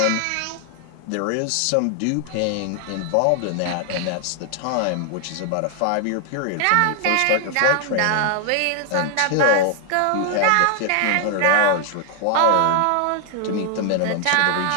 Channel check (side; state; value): both; different; correlation 0.00